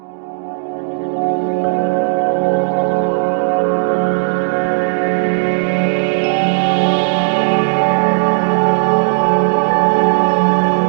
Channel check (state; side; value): silent; left; digital silence